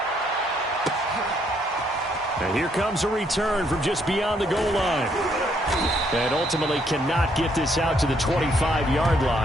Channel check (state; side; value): normal; both; correlation 0.71